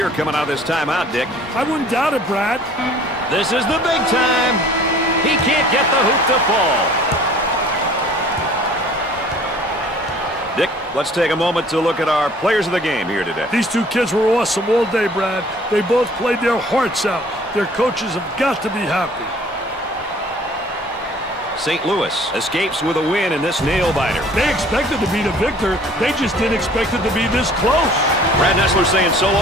coming out of this timeout, Dick. I wouldn't doubt it, Brad. This is the big time. He can't get the hoop to fall. Dick, let's take a moment to look at our players of the game here today. These two kids were awesome all day, Brad. They both played their hearts out. Their coaches have got to be happy. St. Louis escapes with a win in this nail-biter. They expected to be the victor. They just didn't expect it to be this close. Brad Nessler saying so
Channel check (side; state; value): both; normal; correlation 0.52